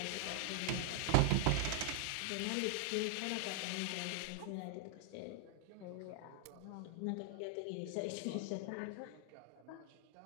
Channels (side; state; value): both; different; correlation 0.00